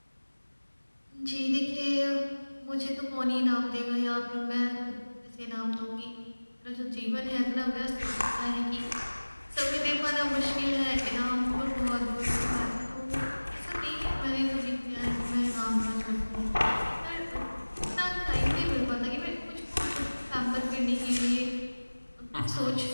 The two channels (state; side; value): inverted; both; correlation -1.00